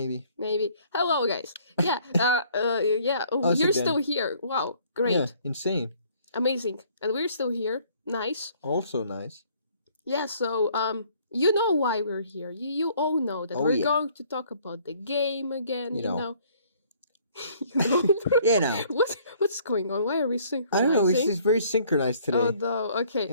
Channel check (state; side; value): inverted; both; correlation -0.60